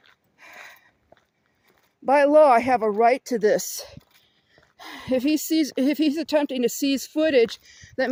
By law, I have a right to this. If he's attempting to seize footage, that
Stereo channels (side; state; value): both; identical; correlation 1.00